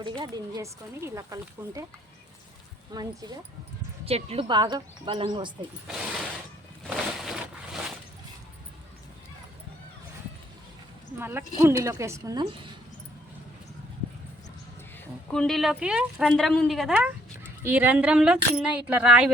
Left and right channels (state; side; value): normal; both; correlation 0.65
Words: దీన్ని చేసుకొని ఇలా కలుపుకుంటే మంచిగా చెట్లు బాగా బలంగా వస్తాయి. మళ్ళీ కుండీలోకి వేసుకుందాం. కుండీలోకి రంధ్రం ఉంది కదా, ఈ రంధ్రంలో చిన్న ఇట్లా రాయి